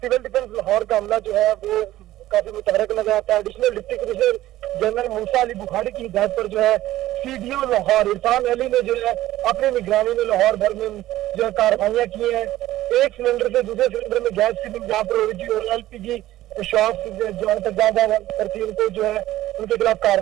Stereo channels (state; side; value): quieter; left; 15.0 dB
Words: डिफेंस लाहौर का हमला जो है वो काफी मुतहरक नजर आता है। एडिशनल डिप्टी कमिश्नर जनरल मूसा अली बुखारी की हिदायत पर जो है सीडीओ लाहौर इरफान अली ने जो है अपनी निगरानी में लाहौर भर में जो है कार्रवाइयां की हैं। एक सिलेंडर से दूसरे सिलेंडर में गैस फिलिंग जहाँ पर हो रही थी और एलपीजी शॉप्स जो है तक करती उनको जो है उनके खिलाफ